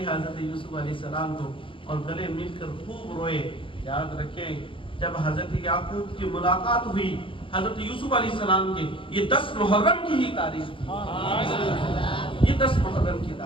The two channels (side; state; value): right; late; 0.25 ms